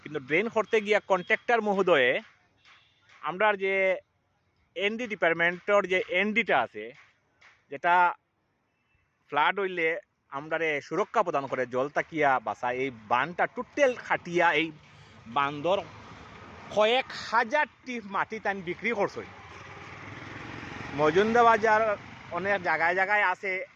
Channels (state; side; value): identical; both; correlation 1.00